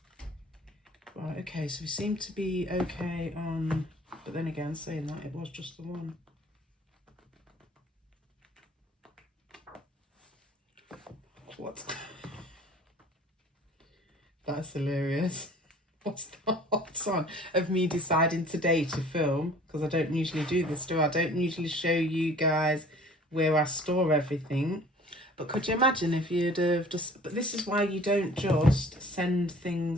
Right, okay, so we seem to be okay on, but then again, saying that, it was just the one. what? That's hilarious. What's the hot on of me deciding today to film? Because I don't usually do this, do I? I don't usually show you guys where I store everything. But could you imagine if you'd have just... But this is why you don't just send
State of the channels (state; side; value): normal; both; correlation 0.50